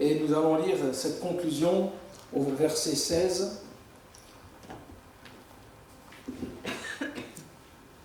nous allons lire cette conclusion au verset 16.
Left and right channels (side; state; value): both; identical; correlation 1.00